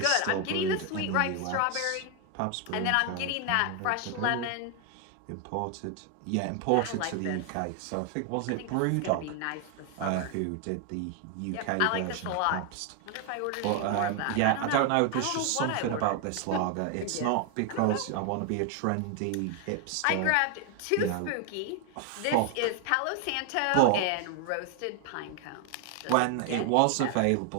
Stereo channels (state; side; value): different; both; correlation 0.01